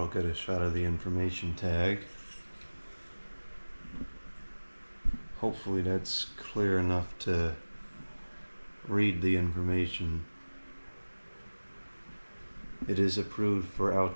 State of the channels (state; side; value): inverted; both; correlation -1.00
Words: get a shot of the information tag. Hopefully that's clear enough to read the information. It is approved for